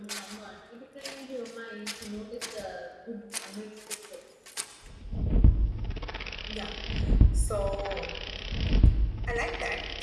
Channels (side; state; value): both; identical; correlation 1.00